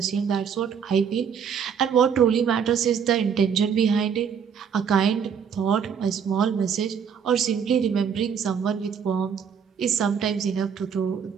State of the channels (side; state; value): left; quieter; 7.2 dB